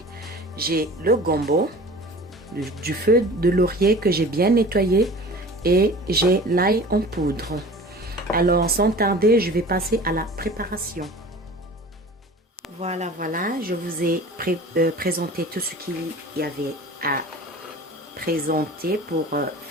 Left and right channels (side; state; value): both; normal; correlation 0.41